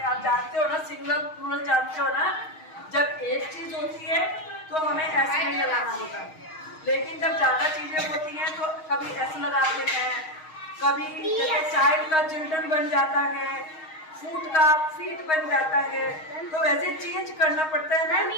आप जानते हो ना, सिंगल प्लूरल जानते हो ना, जब एक चीज होती है तो हमें ऐसे नहीं लगाना होता, लेकिन जब ज्यादा चीजें होती हैं तो कभी ऐसे लगा देते हैं, कभी जैसे चाइल्ड का चिल्ड्रन बन जाता है, फूट का फीट बन जाता है, तो वैसे चेंज करना पड़ता है ना।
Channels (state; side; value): late; right; 6.4 ms